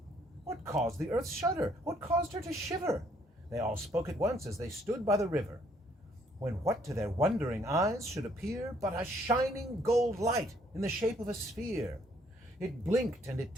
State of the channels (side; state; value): both; normal; correlation 0.66